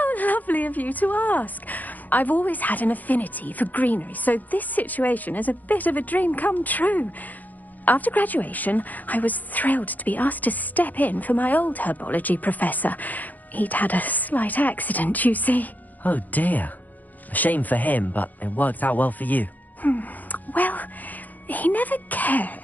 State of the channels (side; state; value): right; late; 0.082 ms